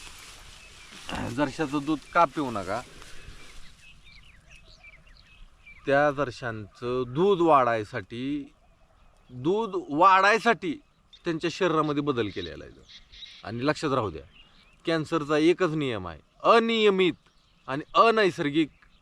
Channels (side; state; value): both; identical; correlation 1.00